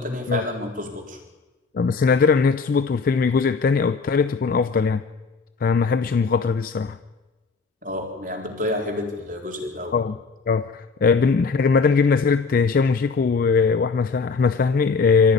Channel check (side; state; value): right; quieter; 4.7 dB